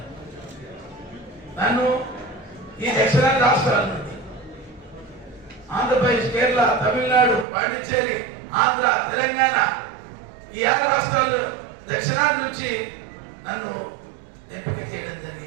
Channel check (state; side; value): drops out; left; at 7.5 s